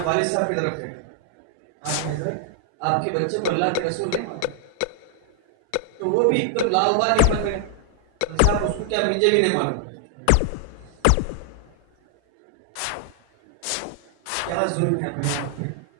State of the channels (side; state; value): both; different; correlation 0.00